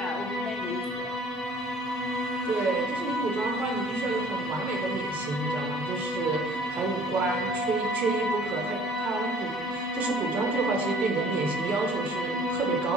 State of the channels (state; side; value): normal; both; correlation 0.53